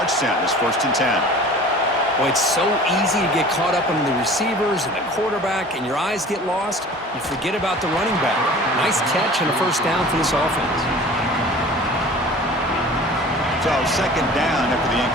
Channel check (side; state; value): both; normal; correlation 0.43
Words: It's 1st and 10. Well, it's so easy to get caught up on the receivers and the quarterback, and your eyes get lost. You forget about the running back. Nice catch and a first down for this offense. So second down after the